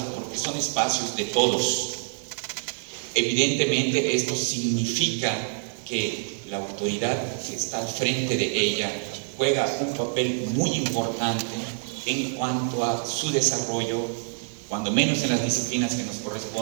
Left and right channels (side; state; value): left; silent; 61 dB below the other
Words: porque son espacios de todos. Evidentemente esto significa que la autoridad que está al frente de ella juega un papel muy importante en cuanto a su desarrollo, cuando menos en las disciplinas que nos